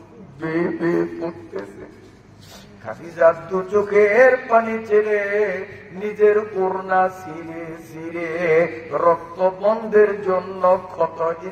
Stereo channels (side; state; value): both; identical; correlation 1.00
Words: বেয়ে বেয়ে পড়তেছে। খাদিজা 2 চোখের পানি ছেড়ে নিজের ওড়না ছিঁড়ে ছিঁড়ে রক্ত বন্ধের জন্য ক্ষত